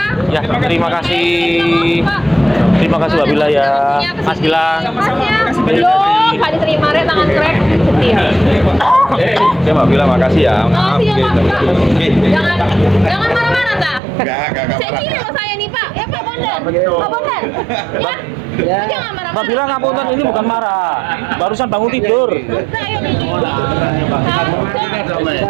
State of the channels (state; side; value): drops out; left; at 14.0 s